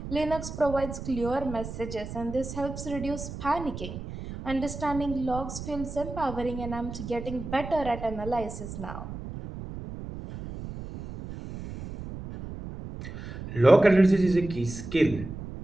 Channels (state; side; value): noise; right; rumble, 9 dB below the sound